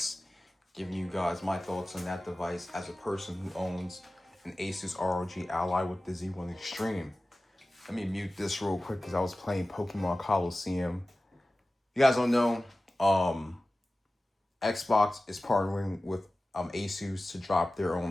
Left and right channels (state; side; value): normal; both; correlation 0.96